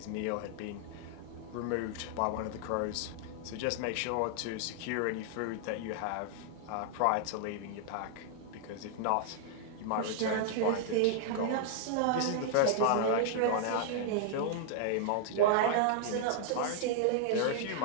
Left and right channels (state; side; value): different; both; correlation -0.01